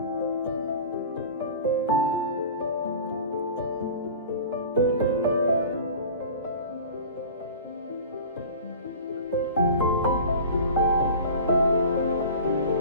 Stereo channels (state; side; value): inverted; both; correlation -0.38